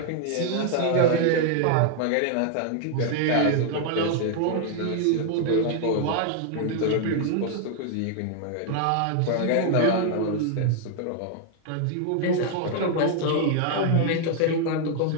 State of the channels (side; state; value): both; different; correlation 0.00